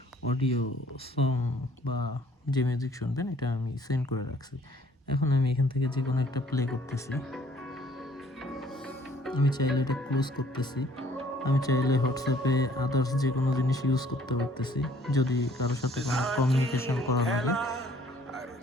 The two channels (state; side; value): normal; both; correlation 0.58